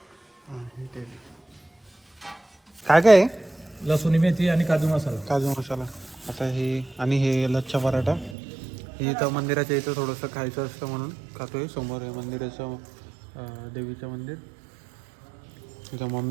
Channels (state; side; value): drops out; left; at 8.3 s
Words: काय काय आहे? लसूण मेथी आणि काजू मसाला. काजू मसाला. आता हे आणि हे लच्छा पराठा. हे इथं मंदिराच्या इथं थोडंसं खायचं असतं म्हणून खातोय. समोर आहे मंदिराचं देवीचं मंदिर. इथं